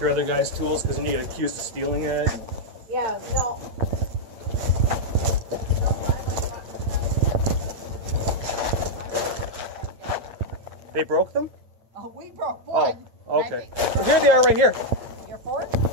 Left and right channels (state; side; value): late; left; 8.8 ms